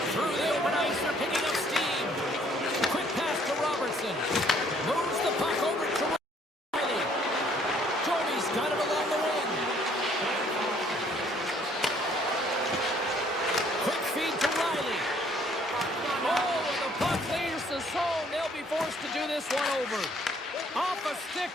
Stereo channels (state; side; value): normal; both; correlation 0.62